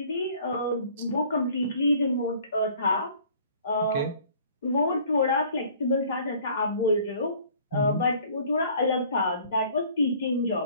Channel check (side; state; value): both; inverted; correlation -0.54